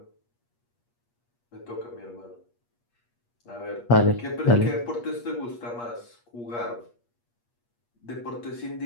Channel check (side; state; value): right; late; 8.4 ms